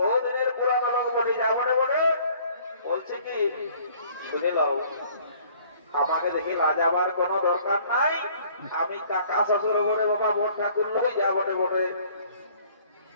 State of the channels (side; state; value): both; inverted; correlation -0.56